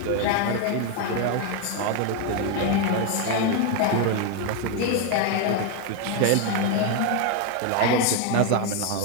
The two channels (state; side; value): different; both; correlation 0.01